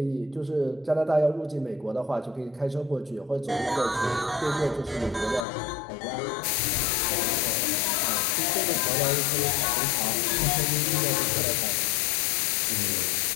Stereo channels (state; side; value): drops out; right; at 5.5 s